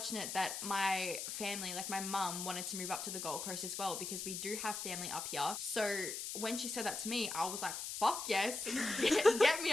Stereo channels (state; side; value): noise; left; hiss, 5 dB below the sound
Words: that my family, like my mum, wanted to move up to the Gold Coast as well, because we do have family up here. So when she said that to me, I was like, fuck yes, get me